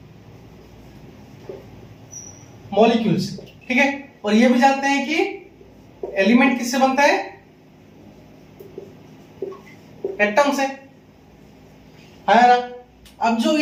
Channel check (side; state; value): both; identical; correlation 1.00